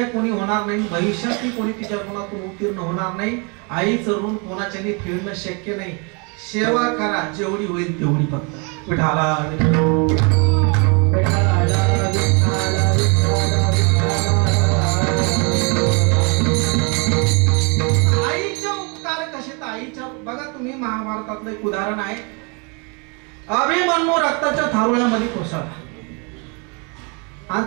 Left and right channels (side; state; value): left; quieter; 33.5 dB